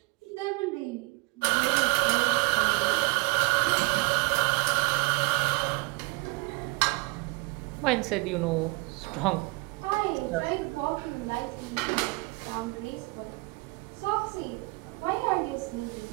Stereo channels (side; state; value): left; quieter; 26.2 dB